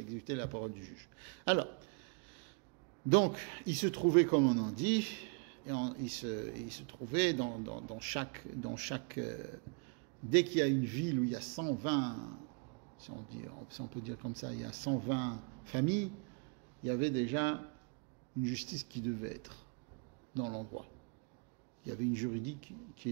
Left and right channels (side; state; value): left; quieter; 35.7 dB